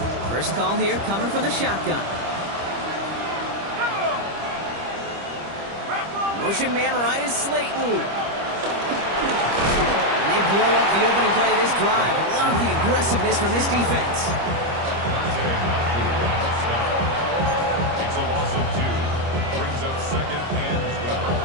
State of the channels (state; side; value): late; left; 25 ms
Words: First call here coming from the shotgun. Motion man right is Slayton. And they blow up the opening play of this drive. Love the aggressiveness from this defense. It's a loss of 2. Brings up 2nd and 12